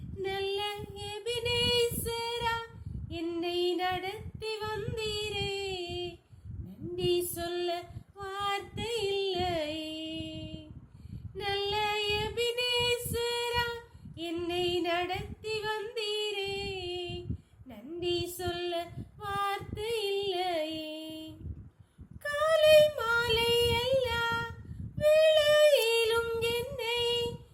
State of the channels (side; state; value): both; identical; correlation 1.00